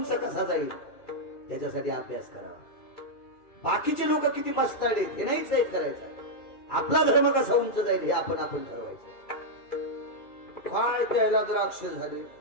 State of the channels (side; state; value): right; late; 2.3 ms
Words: कसा जाईल त्याच्यासाठी अभ्यास करावा. बाकीचे लोक किती मस्ताडे हे नाहीच हे करायचं. आपला धर्म कसा उंच जाईल हे आपण ठरवायचं. काय प्यायला द्राक्ष झाले